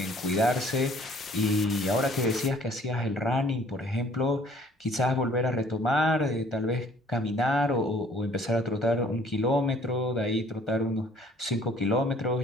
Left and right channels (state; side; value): normal; both; correlation 0.56